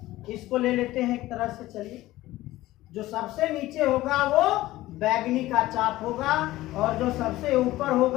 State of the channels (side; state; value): right; quieter; 16.8 dB